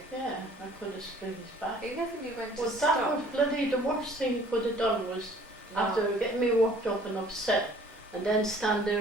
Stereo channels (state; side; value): normal; both; correlation 0.54